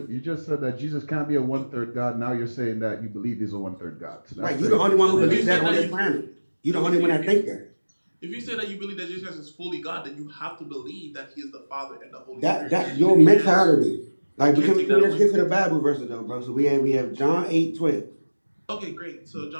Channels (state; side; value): inverted; both; correlation -1.00